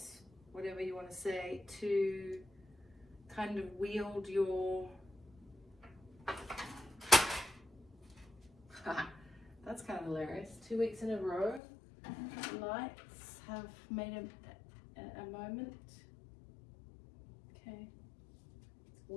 whatever you want to say, to kind of wield your that's kind of hilarious. 2 weeks in a row, lights have made a moment. Okay,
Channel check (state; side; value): drops out; right; at 11.6 s